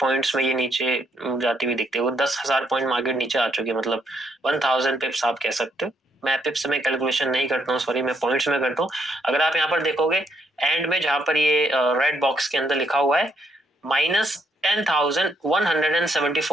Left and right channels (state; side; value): normal; both; correlation 0.73